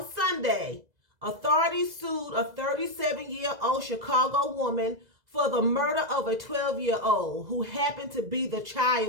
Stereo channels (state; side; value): late; left; 2.0 ms